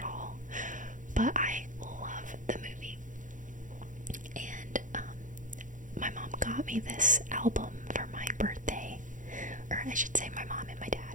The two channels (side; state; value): left; late; 0.37 ms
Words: all, but I love the movie. And my mom got me this album for my birthday, or I should say my mom and my